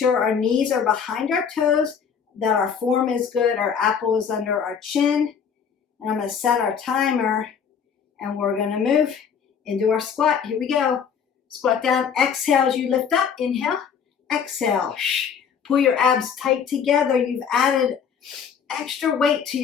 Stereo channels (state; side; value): quieter; right; 7.1 dB